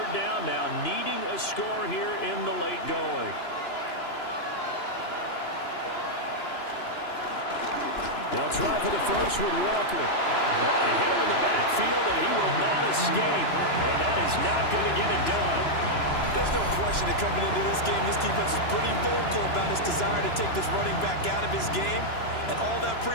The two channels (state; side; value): late; right; 2.9 ms